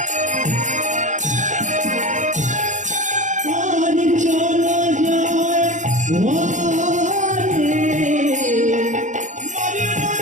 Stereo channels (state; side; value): late; left; 0.36 ms